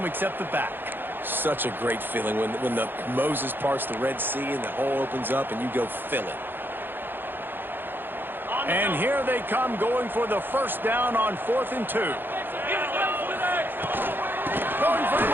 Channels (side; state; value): left; late; 0.099 ms